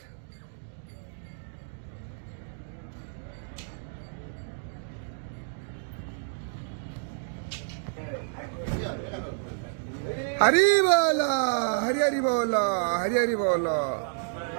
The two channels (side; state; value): left; silent; digital silence